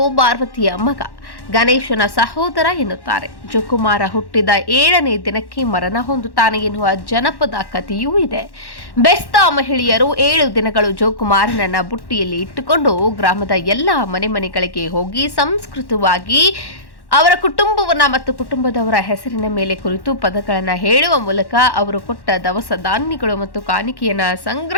ಪಾರ್ವತಿಯ ಮಗ, ಗಣೇಶನ ಸಹೋದರ ಎನ್ನುತ್ತಾರೆ. ಜೋಕುಮಾರ ಹುಟ್ಟಿದ 7ನೇ ದಿನಕ್ಕೆ ಮರಣ ಹೊಂದುತ್ತಾನೆ ಎನ್ನುವ ಜನಪದ ಕಥೆಯೂ ಇದೆ. ಬೆಸ್ತ ಮಹಿಳೆಯರು 7 ದಿನಗಳು ಜೋಕುಮಾರನನ್ನ ಬುಟ್ಟಿಯಲ್ಲಿ ಇಟ್ಟುಕೊಂಡು ಗ್ರಾಮದ ಎಲ್ಲ ಮನೆಗಳಿಗೆ ಹೋಗಿ ಸಂಸ್ಕೃತವಾಗಿ ಅವರ ಕುಟುಂಬವನ್ನ ಮತ್ತು ಕುಟುಂಬದವರ ಹೆಸರಿನ ಮೇಲೆ ಕುರಿತು ಪದಗಳನ್ನು ಹೇಳುವ ಮೂಲಕ ಅವರು ಕೊಟ್ಟ ದವಸ ಧಾನ್ಯಗಳು ಮತ್ತು ಕಾಣಿಕೆಯನ್ನ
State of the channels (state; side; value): late; right; 1.1 ms